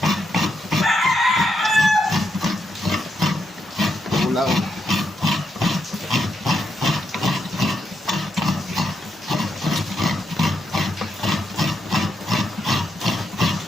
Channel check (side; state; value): both; normal; correlation 0.81